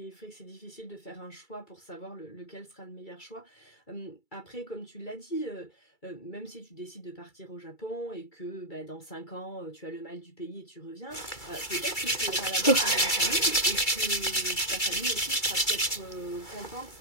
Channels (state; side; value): late; right; 2.3 ms